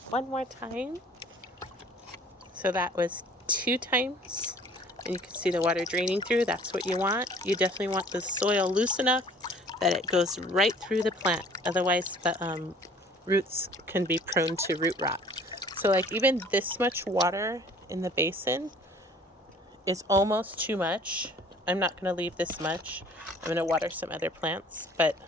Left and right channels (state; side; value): normal; both; correlation 0.52